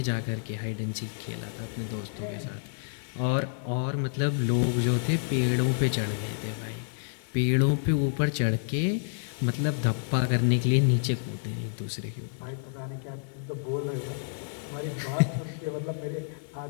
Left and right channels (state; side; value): silent; right; digital silence